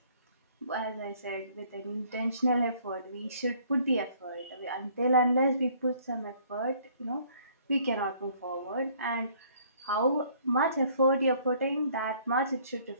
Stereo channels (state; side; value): inverted; both; correlation -0.60